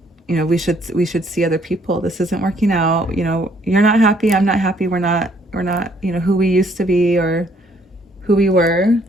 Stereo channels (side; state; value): both; normal; correlation 0.65